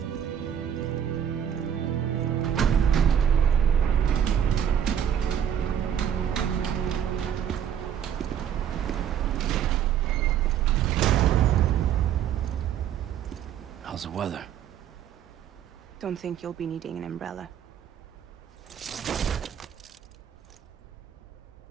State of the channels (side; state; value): left; quieter; 9.1 dB